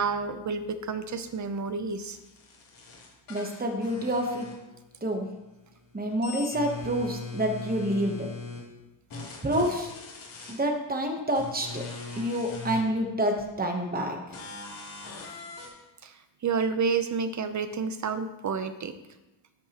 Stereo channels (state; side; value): normal; both; correlation 0.18